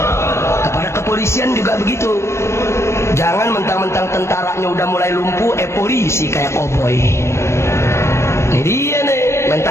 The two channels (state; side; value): late; right; 0.13 ms